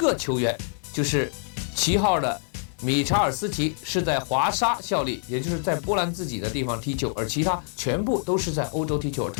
球员，就是7号的米查尔斯奇是在华沙效力，也就是在波兰自己的地方踢球，而其他全部都是在欧洲踢球，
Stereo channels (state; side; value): silent; right; 56 dB below the other